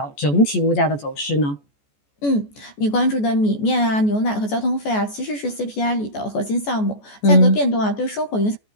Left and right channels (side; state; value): right; late; 14 ms